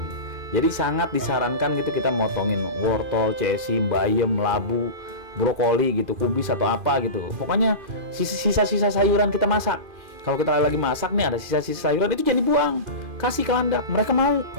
Jadi sangat disarankan gitu kita motongin wortel, cesi, bayam, labu, brokoli gitu, kubis atau apa gitu. Pokoknya sisa-sisa sayuran kita masak. Kalau kita lagi masak nih ada sisa-sisa sayuran, itu jangan dibuang, kasih ke landak. Mereka mau.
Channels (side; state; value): left; late; 2.5 ms